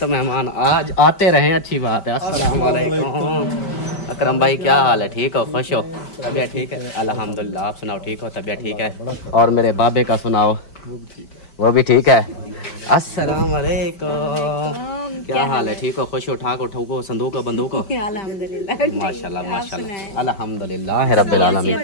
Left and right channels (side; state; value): right; late; 5.1 ms